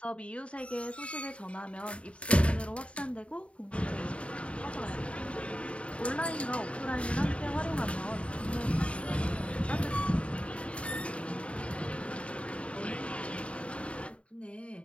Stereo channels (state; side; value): late; right; 0.061 ms